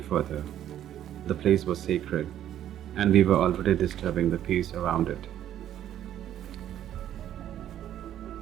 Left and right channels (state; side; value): quieter; left; 11.2 dB